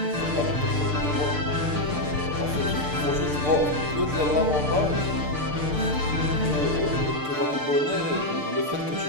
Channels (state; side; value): late; left; 6.7 ms